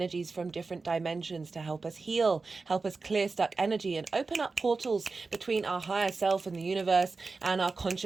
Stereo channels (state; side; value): quieter; left; 4.1 dB